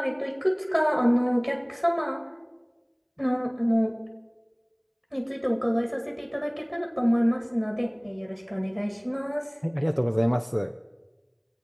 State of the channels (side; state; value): both; identical; correlation 1.00